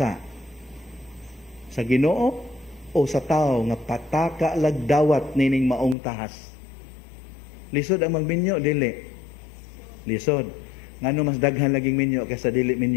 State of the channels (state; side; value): drops out; right; at 6.0 s